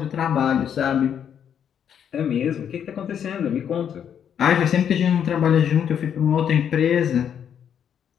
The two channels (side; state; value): right; quieter; 8.6 dB